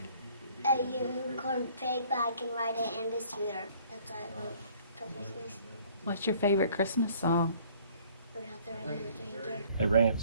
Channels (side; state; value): both; inverted; correlation -0.57